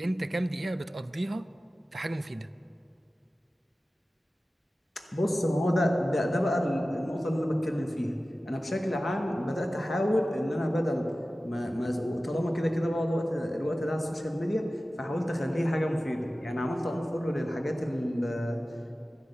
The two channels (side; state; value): both; normal; correlation 0.96